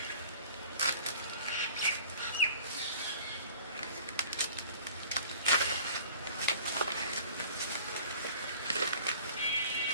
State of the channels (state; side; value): inverted; both; correlation -0.48